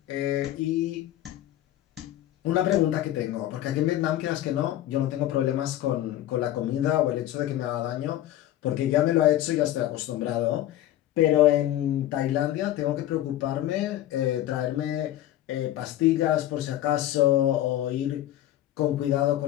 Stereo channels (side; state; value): right; quieter; 13.4 dB